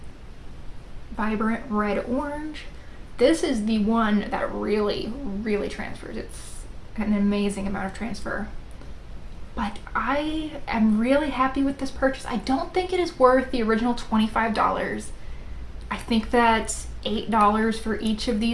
vibrant red orange. This is the one that really, really transfers. It's an amazing amount of transfer. But I am really happy with this purchase. I don't think it is worth the original $25. I think that $8 for each of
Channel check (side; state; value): both; identical; correlation 1.00